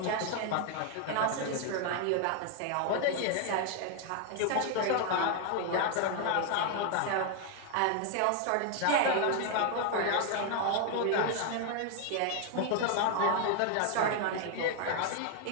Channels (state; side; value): different; both; correlation 0.00